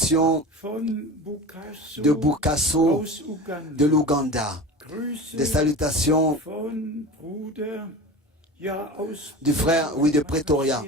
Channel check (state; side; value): normal; both; correlation 0.32